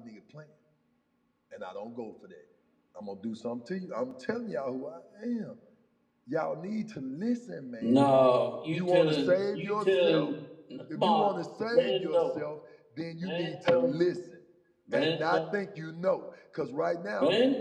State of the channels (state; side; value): identical; both; correlation 1.00